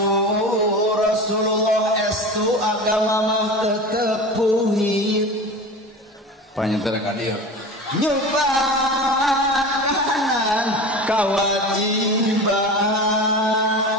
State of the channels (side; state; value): both; normal; correlation 0.31